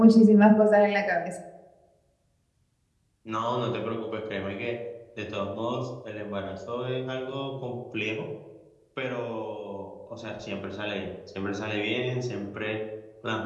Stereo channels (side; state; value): both; identical; correlation 1.00